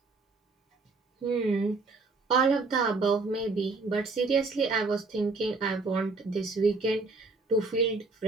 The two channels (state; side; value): quieter; left; 3.7 dB